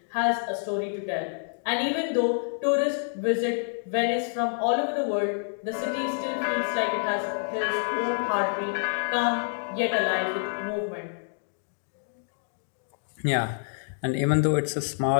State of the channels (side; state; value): right; silent; digital silence